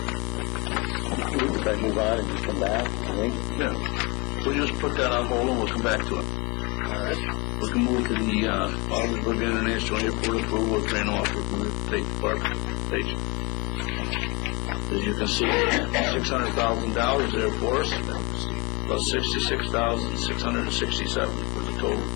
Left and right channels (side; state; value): right; quieter; 27.8 dB